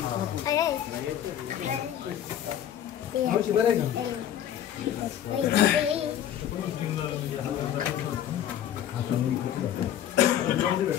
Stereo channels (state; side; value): quieter; right; 10.6 dB